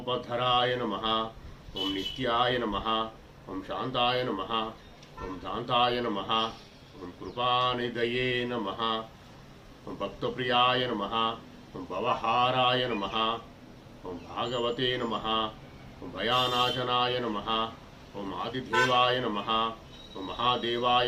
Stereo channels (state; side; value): identical; both; correlation 1.00